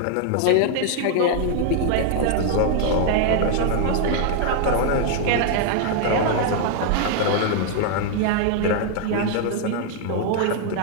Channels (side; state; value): both; different; correlation 0.00